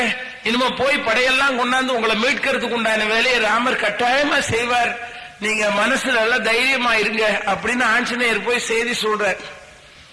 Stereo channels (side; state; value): both; identical; correlation 1.00